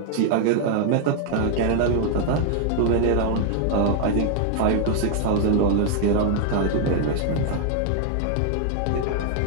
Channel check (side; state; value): both; different; correlation 0.00